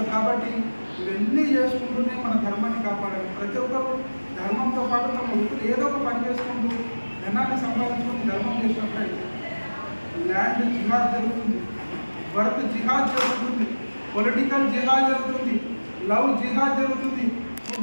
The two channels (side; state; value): both; inverted; correlation -1.00